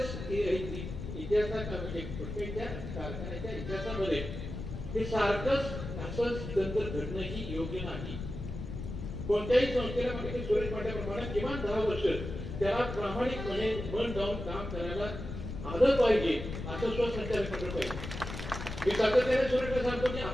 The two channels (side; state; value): left; noise; rumble, 7 dB below the sound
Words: इतिहासात म्हणजे पुष्कळच्या कारखान्याच्या इतिहासामध्ये हे सारखंच असं तंत्र घडणंही योग्य नाही. कोणत्याही संस्थेला म्हणजे सुरेश म्हटल्याप्रमाणे किमान 10 वर्ष त्याला प्रामाणिकपणे मन लावून काम करायला आलं पाहिजे, असं स्वसंचालित मंडळ पाहिजे. मी सातत्याने सुरेशला सांगतो की